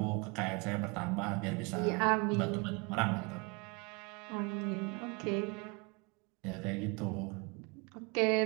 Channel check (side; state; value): left; quieter; 29.9 dB